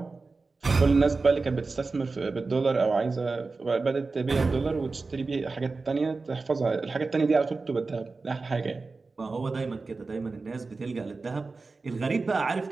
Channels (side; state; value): left; quieter; 3.9 dB